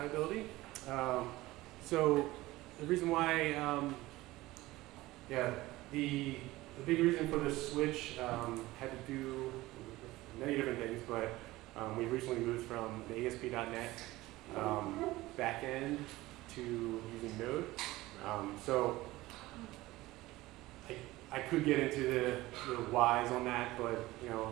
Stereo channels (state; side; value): quieter; left; 18.5 dB